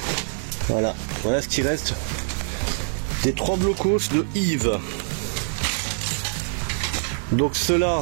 Voilà, voilà ce qui reste des 3 blocos de Yves. Donc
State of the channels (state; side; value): silent; left; digital silence